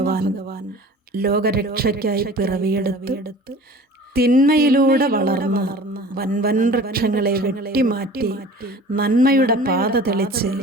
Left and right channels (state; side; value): normal; both; correlation 0.43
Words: ലോകരക്ഷയ്ക്കായി പിറവിയെടുത്ത് തിന്മയിലൂടെ വളർന്ന് വൻവൻ വൃക്ഷങ്ങളെ വെട്ടിമാറ്റി നന്മയുടെ പാത തെളിച്ച്